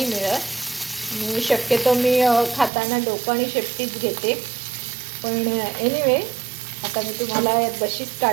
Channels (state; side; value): drops out; left; at 2.7 s